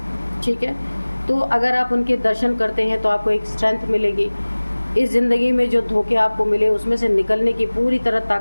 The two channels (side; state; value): both; inverted; correlation -1.00